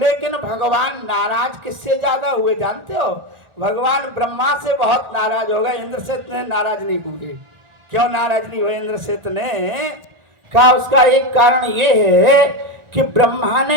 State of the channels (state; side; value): late; left; 1.4 ms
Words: भगवान नाराज किससे ज्यादा हुए जानते हो? भगवान ब्रह्मा से बहुत नाराज हो गए, इंद्र से इतने नाराज नहीं हुए। क्यों नाराज नहीं हुए इंद्र से इतने? कहा उसका एक कारण ये है कि ब्रह्मा